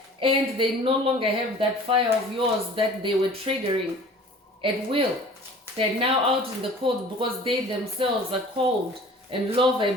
and they no longer have that fire of yours that they were triggering at will. They're now out in the cold because they themselves are cold and low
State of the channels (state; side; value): normal; both; correlation 0.46